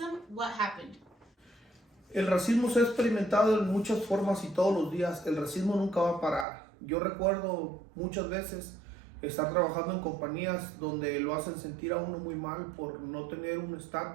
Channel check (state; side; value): drops out; left; at 6.5 s